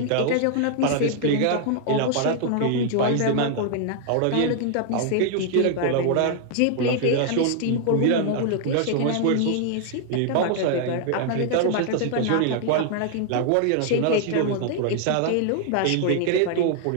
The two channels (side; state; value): both; different; correlation 0.00